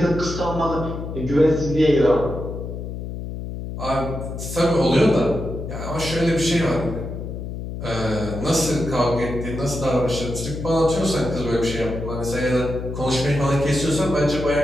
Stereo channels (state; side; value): noise; left; hum, 7 dB below the sound